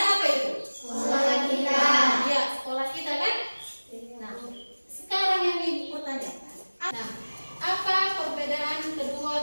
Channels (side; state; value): both; inverted; correlation -1.00